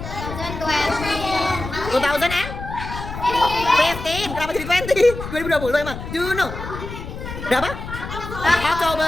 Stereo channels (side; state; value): left; noise; rumble, 9 dB below the sound